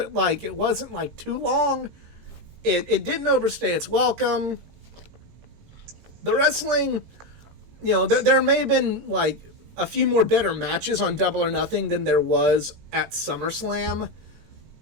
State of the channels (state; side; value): late; left; 18 ms